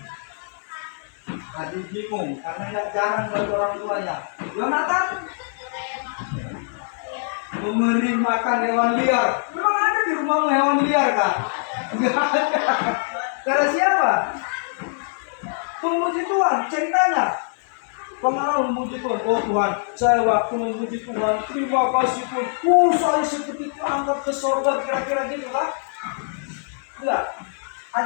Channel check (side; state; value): right; silent; 63 dB below the other